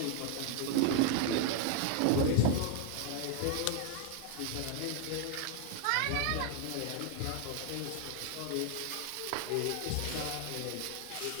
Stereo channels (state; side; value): different; both; correlation 0.00